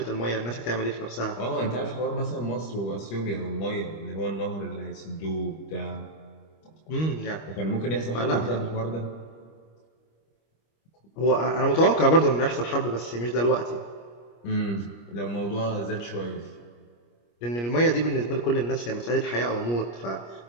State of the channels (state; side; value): late; right; 25 ms